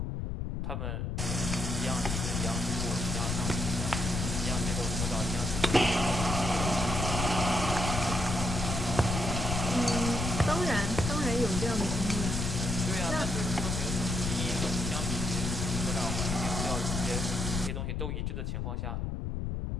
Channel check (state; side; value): noise; left; rumble, 2 dB below the sound